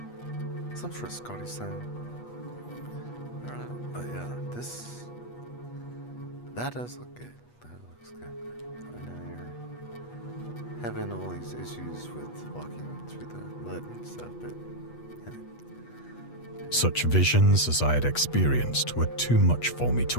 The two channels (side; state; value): right; late; 8.3 ms